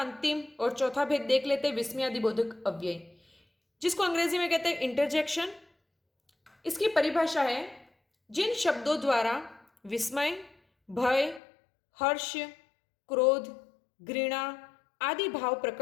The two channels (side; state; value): right; drops out; at 11.4 s